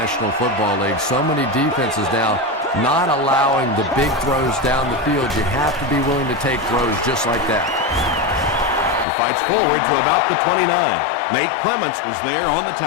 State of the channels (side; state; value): right; drops out; at 9.1 s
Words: Football League. So many defenses now not allowing the big throws down the field. You have to be willing to take throws just like that. He fights forward to about the 29. Nate Clements was there on the